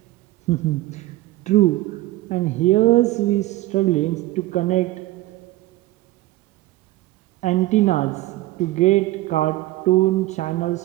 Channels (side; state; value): left; quieter; 17.5 dB